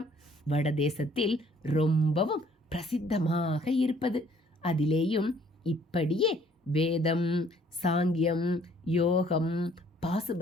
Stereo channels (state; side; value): normal; both; correlation 0.60